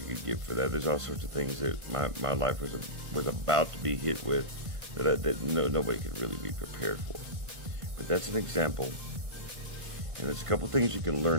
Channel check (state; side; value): late; left; 1.5 ms